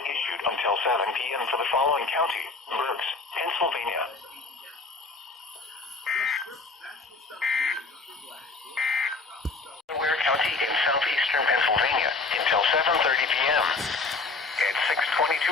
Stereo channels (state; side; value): quieter; right; 3.9 dB